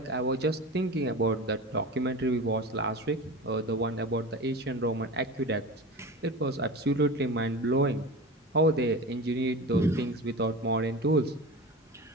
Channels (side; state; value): both; normal; correlation 0.31